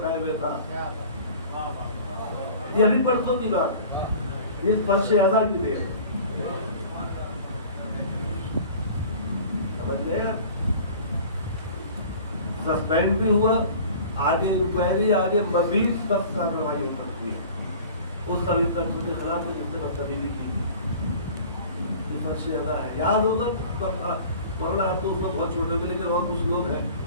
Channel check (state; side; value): inverted; both; correlation -0.44